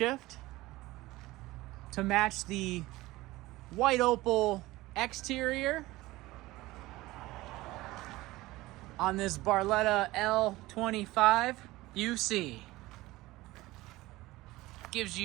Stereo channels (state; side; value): quieter; left; 18.9 dB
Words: to match the white opal exterior on this Barletta L25UC. Gives